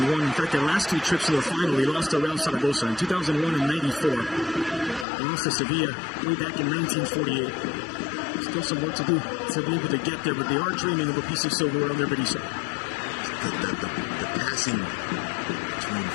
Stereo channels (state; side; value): drops out; right; at 5.1 s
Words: In fact, their last 2 trips to the final, they lost to Real Zaragoza in 2001 and 94. They lost to Sevilla way back in 1948. Still some work to do to be able to get there, but they are dreaming of a piece of silverware under Berizzo. The passing between